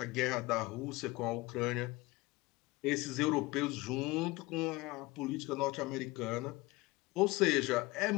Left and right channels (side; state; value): right; quieter; 21.5 dB